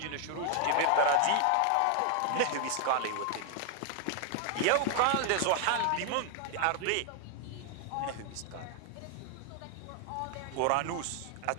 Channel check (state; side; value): different; both; correlation 0.00